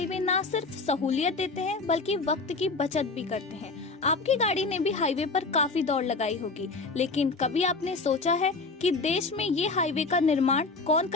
ना सिर्फ सहूलियत देते हैं बल्कि वक्त की बचत भी करते हैं। आपकी गाड़ी ने भी हाईवे पर काफी दौड़ लगाई होगी, लेकिन कभी आपने सोचा है कि देश में ये हाईवे का निर्माण कौन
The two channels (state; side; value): quieter; right; 3.9 dB